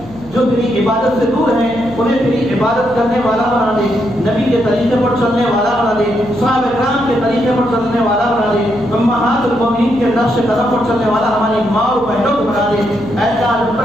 جو تیری عبادت سے دور ہیں, انہیں تیری عبادت کرنے والا بنا دے. نبی کے طریقے پر چلنے والا بنا دے, صحابہ کرام کے طریقے پر چلنے والا بنا دے, امہات المومنین کے نقش قدم پر چلنے والا ہماری ماں اور بہنوں کو بنا دے. ایسا جب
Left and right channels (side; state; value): left; noise; hum, 20 dB below the sound